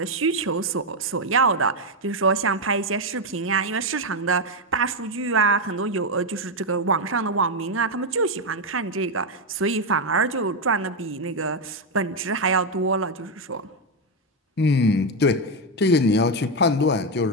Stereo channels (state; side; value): normal; both; correlation 0.05